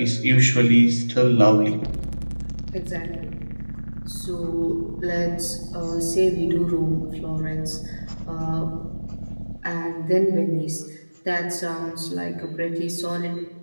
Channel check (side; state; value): both; inverted; correlation -1.00